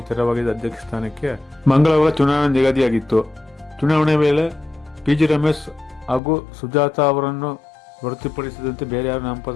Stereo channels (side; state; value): right; drops out; at 6.2 s